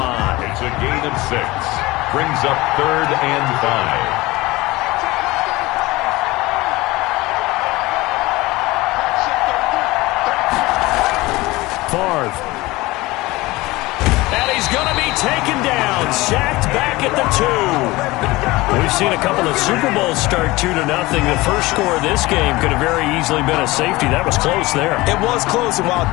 It's a gain of 6. Brings up 3rd and 5. Favre. And he's going to be taken down. Sacked back at the 2. We've seen a couple of Super Bowls start 2-0. The first score of this game could have very easily been a safety. That was close there. It was close, and while it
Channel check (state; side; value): quieter; right; 20.6 dB